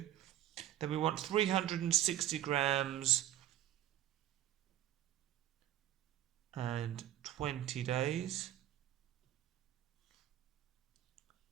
Then we want 360 grams and 20 days.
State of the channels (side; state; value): left; quieter; 12.7 dB